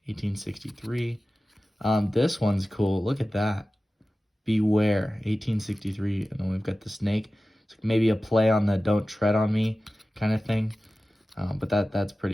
1863. This one's cool. Look at that. Beware, 1863. And then we've got the snake. It's maybe a play on the don't tread on me kind of thing. But that's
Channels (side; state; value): both; normal; correlation 0.96